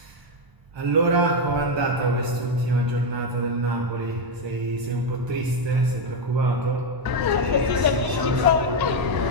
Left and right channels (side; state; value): left; late; 1.0 ms